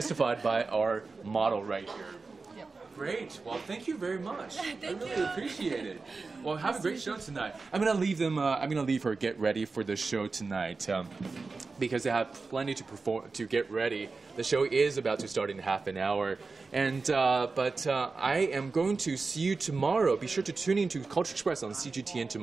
by our model right here. Yep. Great. Well, thank you very much. I really appreciate it. Well, have a great show tonight. I'm gonna leave them. I'm gonna leave her get ready for the show tonight. Because they have plenty to get ready. The show is about to start in half an hour. And I am going to see you tomorrow. Be sure to tune in to Culture Express on CGTN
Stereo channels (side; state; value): left; quieter; 4.1 dB